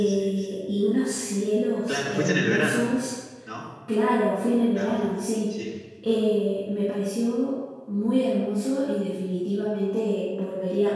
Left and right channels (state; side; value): identical; both; correlation 1.00